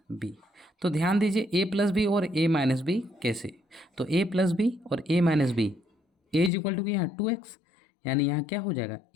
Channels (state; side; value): drops out; right; at 6.5 s